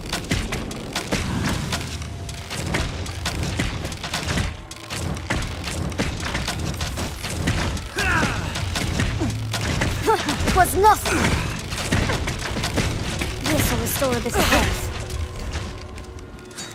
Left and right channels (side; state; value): both; identical; correlation 1.00